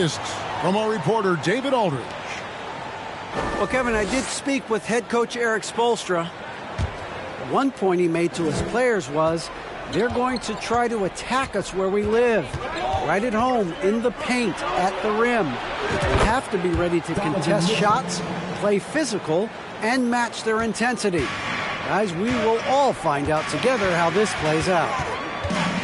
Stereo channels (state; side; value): identical; both; correlation 1.00